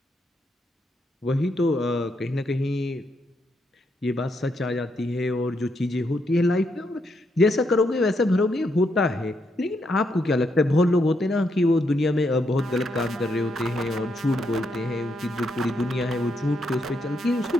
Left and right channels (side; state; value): both; normal; correlation 0.79